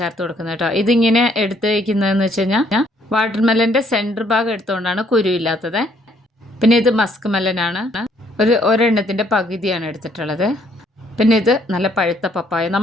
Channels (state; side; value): normal; both; correlation 0.66